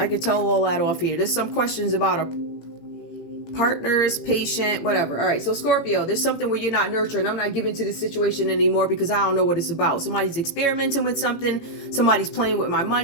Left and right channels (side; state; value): right; late; 18 ms